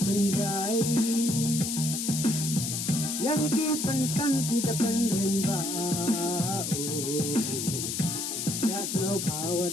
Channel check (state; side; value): noise; left; hiss, 3 dB below the sound